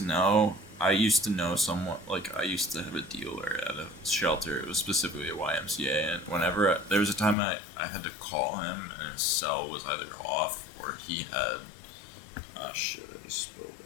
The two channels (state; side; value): drops out; right; at 7.4 s